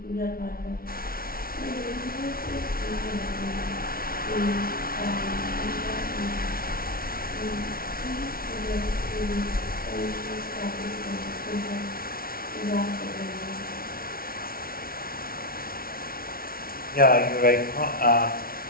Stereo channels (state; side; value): late; right; 0.43 ms